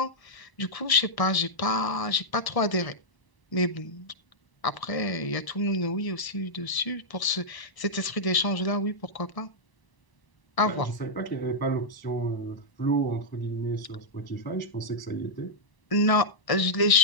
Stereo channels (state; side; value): late; right; 1.0 ms